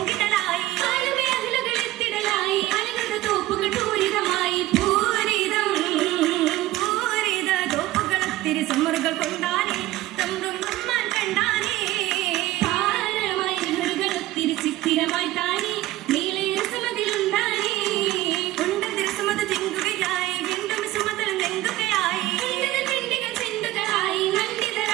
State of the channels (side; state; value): left; quieter; 16.3 dB